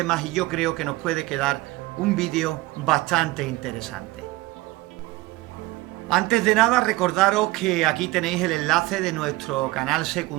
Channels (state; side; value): quieter; left; 19.9 dB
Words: y yo creo que nos puede quedar un vídeo bastante interesante. Antes de nada, recordaros que aquí tenéis el enlace de nuestro canal